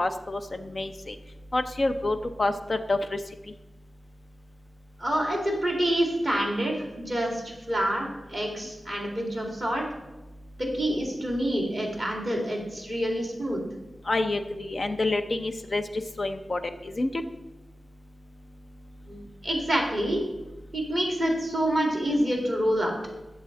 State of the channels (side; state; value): both; normal; correlation 0.92